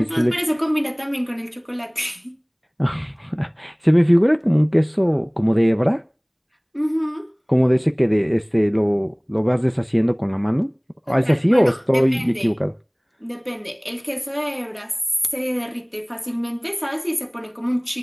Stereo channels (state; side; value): identical; both; correlation 1.00